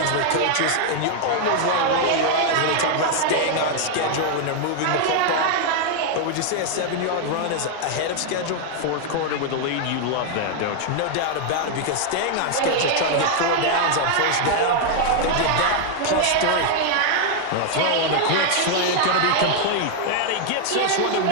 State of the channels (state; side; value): different; both; correlation 0.00